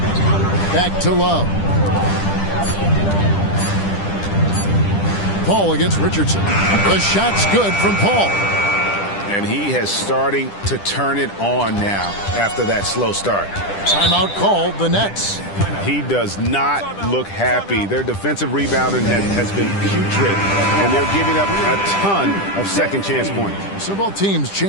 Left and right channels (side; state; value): right; late; 10 ms